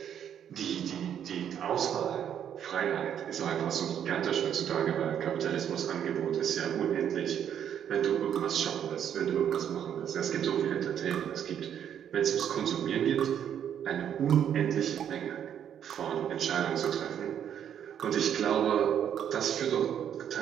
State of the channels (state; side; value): quieter; left; 9.2 dB